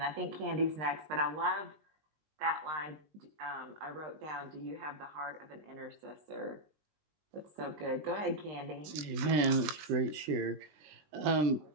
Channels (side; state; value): left; late; 20 ms